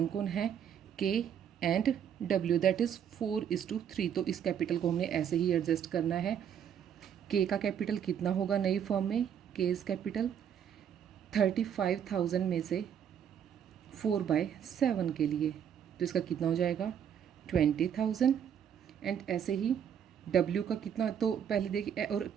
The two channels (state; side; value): quieter; left; 8.7 dB